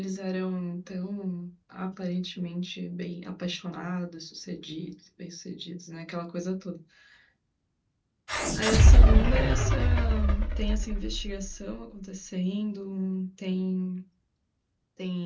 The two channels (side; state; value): both; identical; correlation 1.00